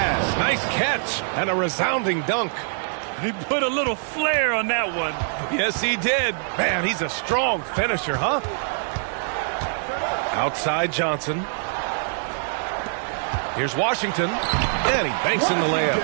Nice catch. And a resounding dunk. He put a little flair on that one. Yes, he did. Man, he's a strong finisher, huh? Outside Johnson. Here's Washington. And he banks in the layup.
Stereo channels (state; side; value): silent; left; 62 dB below the other